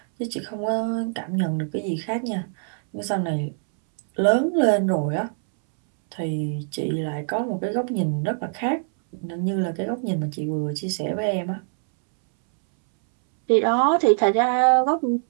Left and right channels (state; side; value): silent; left; 63 dB below the other